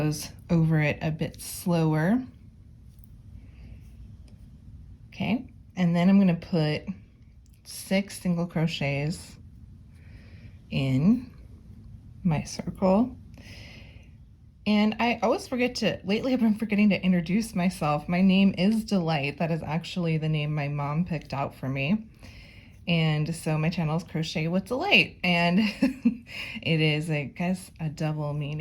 over it a bit slower. Okay, and then I'm going to put 6 single crochets in my circle. And I always lately I've been forgetting to introduce myself. My name is Delight. That is actually the name my mom picked out for me. And so my channel is Crochet with Delight, and it is, I guess, a double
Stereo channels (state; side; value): identical; both; correlation 1.00